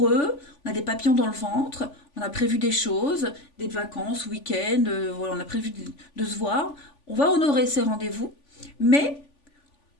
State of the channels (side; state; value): right; late; 3.5 ms